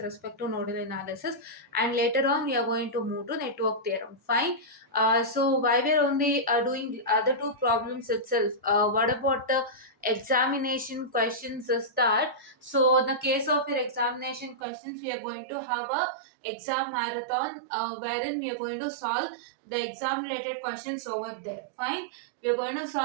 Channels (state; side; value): drops out; left; at 14.6 s